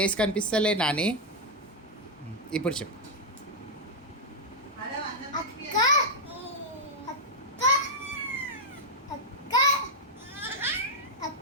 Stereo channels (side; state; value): both; normal; correlation -0.03